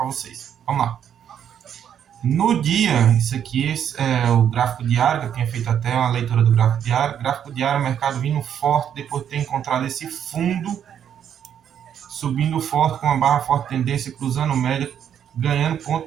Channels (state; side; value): quieter; left; 9.1 dB